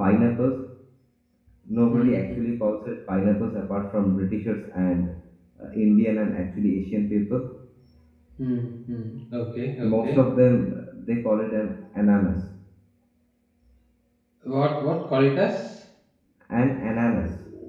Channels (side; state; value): both; identical; correlation 1.00